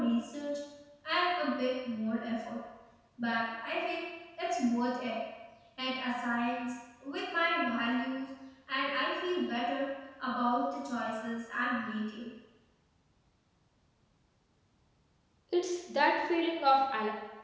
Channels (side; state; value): both; identical; correlation 1.00